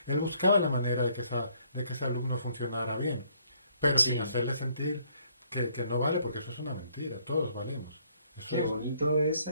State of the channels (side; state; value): both; inverted; correlation -0.67